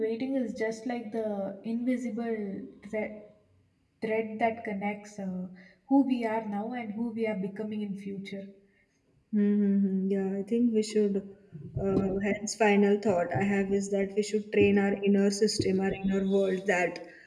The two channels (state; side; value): identical; both; correlation 1.00